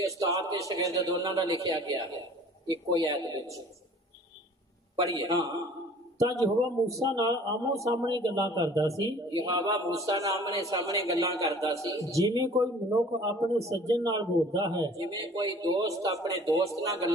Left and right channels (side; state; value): both; normal; correlation 0.49